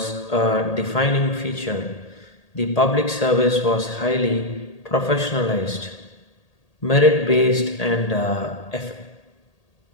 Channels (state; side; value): late; right; 1.8 ms